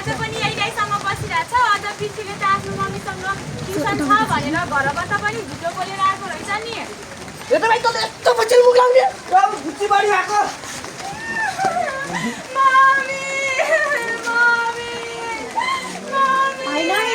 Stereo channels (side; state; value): both; identical; correlation 1.00